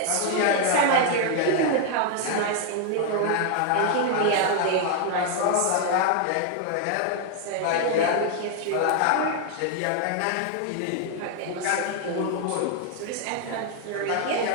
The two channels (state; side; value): different; both; correlation 0.00